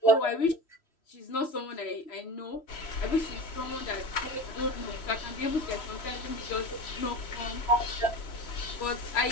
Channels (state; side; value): late; right; 3.0 ms